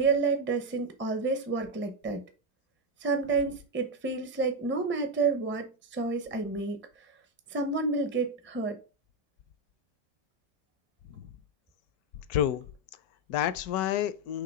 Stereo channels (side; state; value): both; normal; correlation 0.06